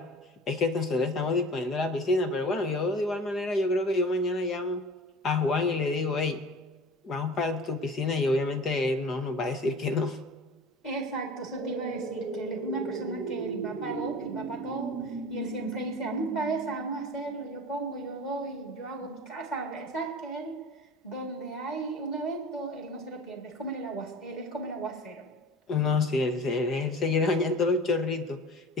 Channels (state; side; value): normal; both; correlation 0.39